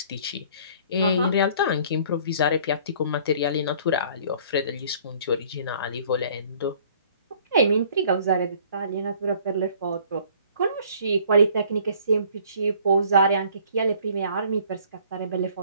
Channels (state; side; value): inverted; both; correlation -0.55